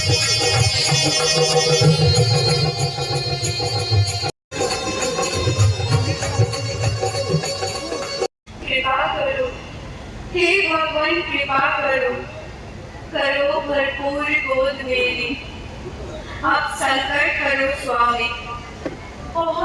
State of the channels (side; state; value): both; identical; correlation 1.00